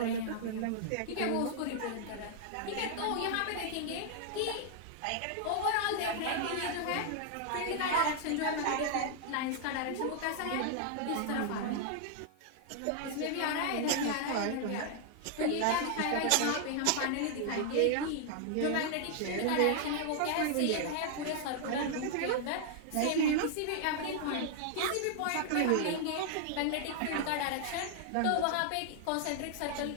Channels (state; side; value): different; both; correlation 0.00